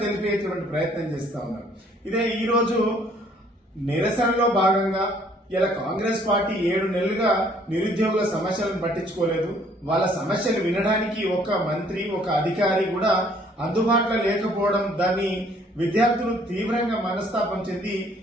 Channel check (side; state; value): both; normal; correlation 0.61